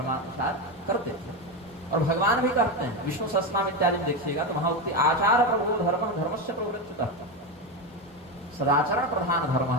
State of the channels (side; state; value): both; normal; correlation 0.14